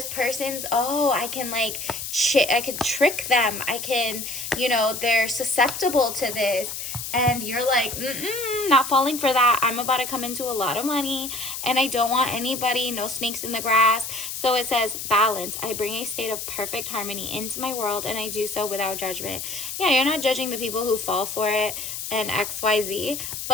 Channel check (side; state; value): left; noise; hiss, 6 dB below the sound